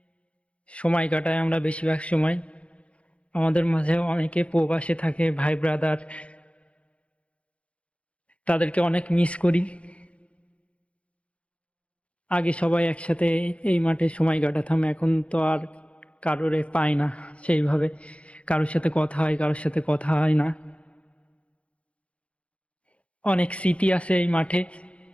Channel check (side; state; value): right; late; 0.062 ms